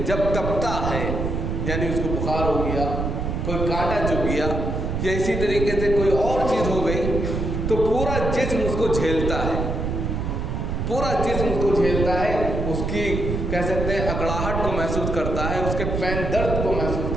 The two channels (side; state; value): right; noise; rumble, 2 dB below the sound